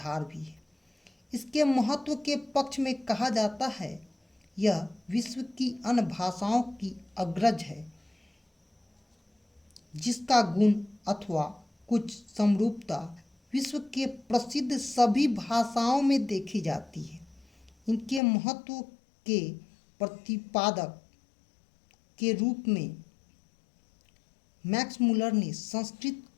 भी है। इसके महत्व के पक्ष में कहा जाता है, यह विश्व की अन्य भाषाओं की अग्रज है। जिसका गुण अथवा कुछ समरूपता विश्व के प्रसिद्ध सभी भाषाओं में देखी जाती है। इनके महत्व के प्रतिपादक के रूप में मैक्स मूलर ने संस्कृत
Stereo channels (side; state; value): right; drops out; at 18.2 s